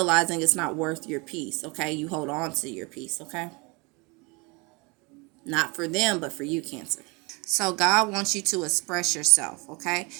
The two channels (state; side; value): quieter; left; 28.6 dB